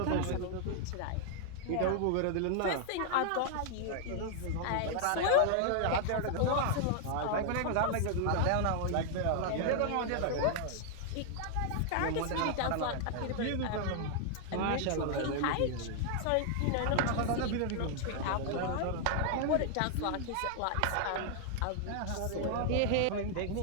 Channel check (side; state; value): both; different; correlation 0.00